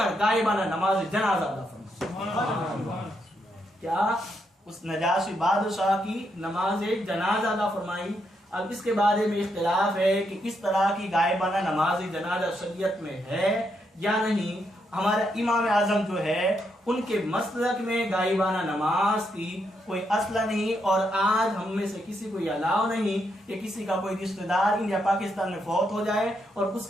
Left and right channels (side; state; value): both; normal; correlation 0.79